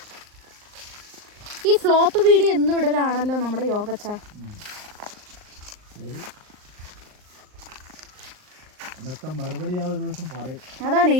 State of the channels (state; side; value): late; left; 39 ms